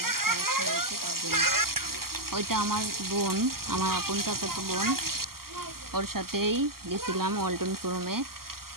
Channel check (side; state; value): left; late; 0.92 ms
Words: সমস্যা হয়েছে, তার জন্য ওইটা আমার বোন, আমার আপন চাচাতো বোন, ওর সাথেই গেছিলাম ওয়ালটন শোরুমে।